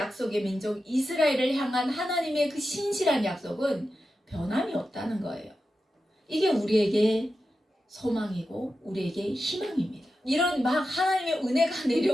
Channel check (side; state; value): both; normal; correlation 0.91